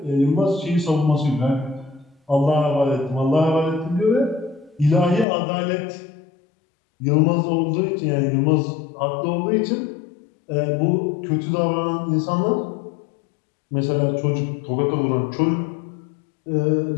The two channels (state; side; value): drops out; right; at 5.2 s